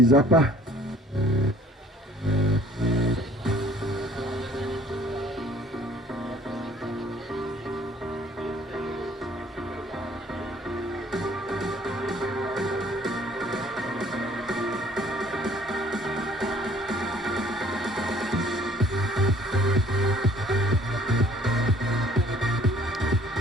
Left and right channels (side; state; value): both; normal; correlation 0.56